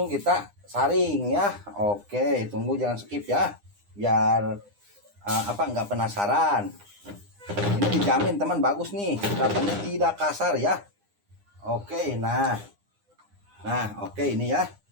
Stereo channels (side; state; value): left; late; 9.8 ms